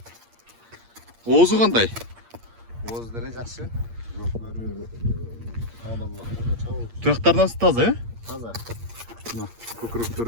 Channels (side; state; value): left; late; 8.6 ms